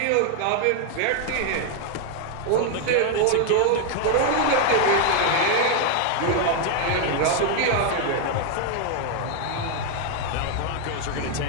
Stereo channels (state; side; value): different; both; correlation 0.01